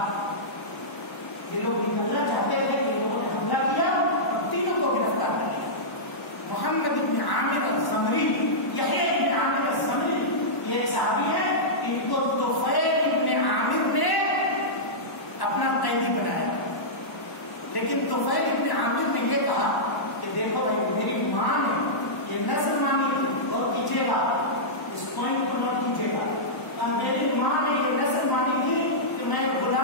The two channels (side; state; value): right; late; 1.0 ms